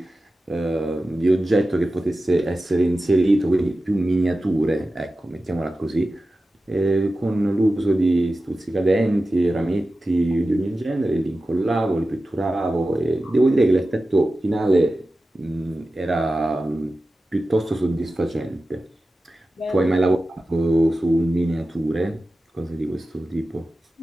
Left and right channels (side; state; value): both; normal; correlation 0.94